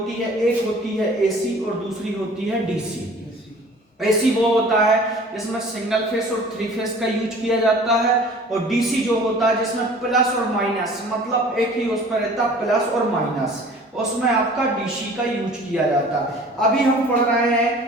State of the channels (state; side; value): normal; both; correlation 0.47